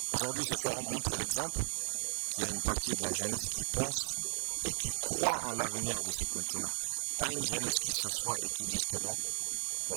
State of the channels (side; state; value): left; silent; digital silence